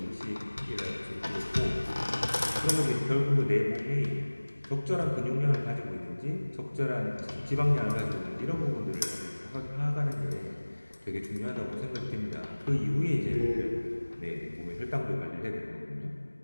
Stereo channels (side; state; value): both; inverted; correlation -1.00